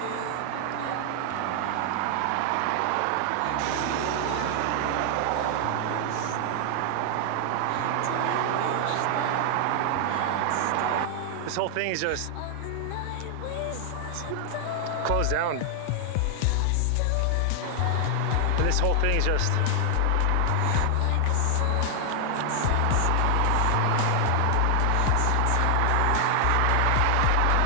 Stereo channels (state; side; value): different; both; correlation 0.00